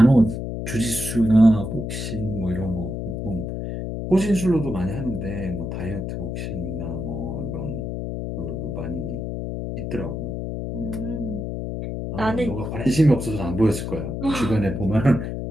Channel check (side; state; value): left; noise; hum, 4 dB below the sound